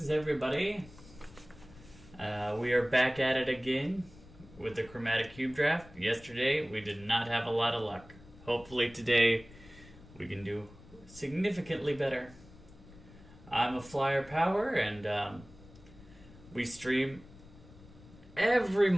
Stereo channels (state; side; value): noise; left; rumble, 21 dB below the sound